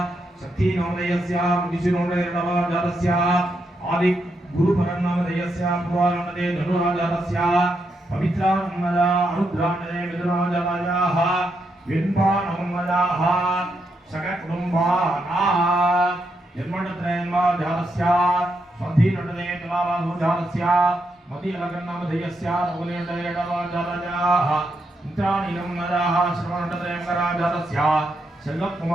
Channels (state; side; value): normal; both; correlation 0.81